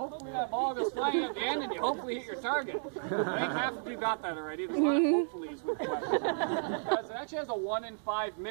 that ball goes flying at the end and you hopefully hit your target. I think half of you got that already. There's a lot of hopefullys with the weapon. Because it actually has a 1 in 5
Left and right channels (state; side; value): silent; left; digital silence